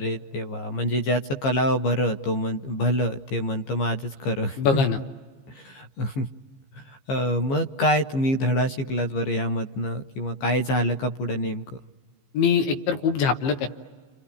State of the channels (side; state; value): right; late; 15 ms